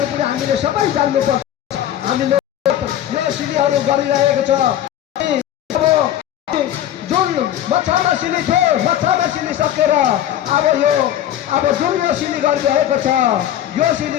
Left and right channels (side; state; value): right; quieter; 11.6 dB